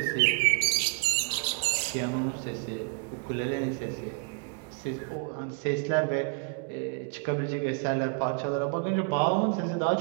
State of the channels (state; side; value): quieter; left; 33.2 dB